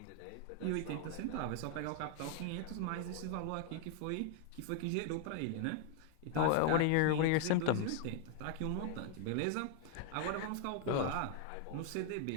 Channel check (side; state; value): both; different; correlation 0.00